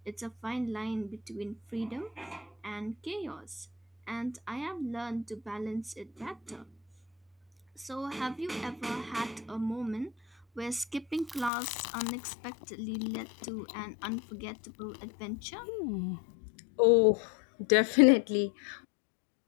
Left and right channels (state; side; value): drops out; right; at 11.5 s